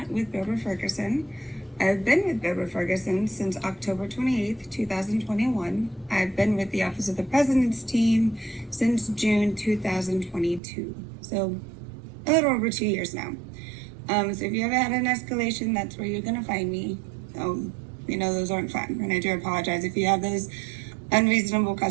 with Bilber Ferguson. I've been with Bilber Ferguson since October 28th, 2021. I've been with the Office of the President's team since June 2022. So a little over 2 years now. So if you ever had an escalation, that's where you're gonna find me. Those aren't fun, and I do apologize if you have those unreasonable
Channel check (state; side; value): drops out; left; at 10.6 s